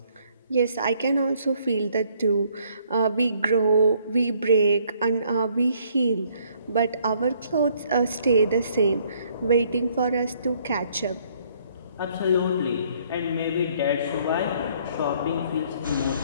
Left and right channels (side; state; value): both; inverted; correlation -0.64